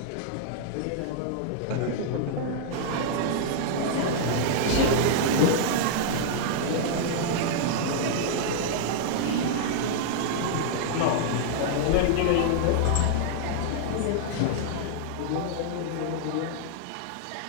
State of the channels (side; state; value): both; different; correlation -0.01